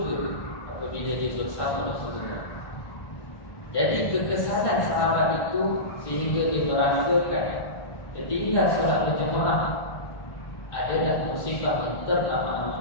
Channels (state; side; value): late; right; 1.1 ms